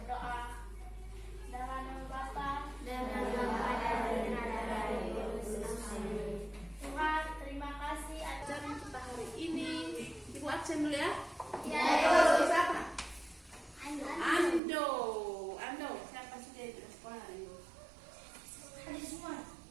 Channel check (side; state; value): left; drops out; at 14.6 s